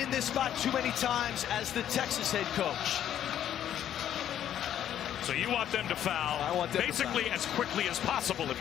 this spot too many times as the Texas head coach. So you want them to foul, I want them basically to foul as quickly as possible if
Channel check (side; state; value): right; quieter; 10.6 dB